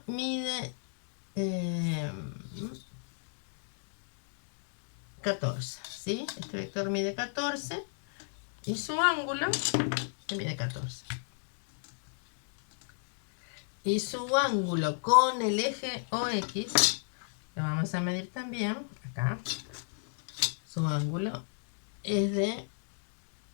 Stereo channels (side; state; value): right; silent; digital silence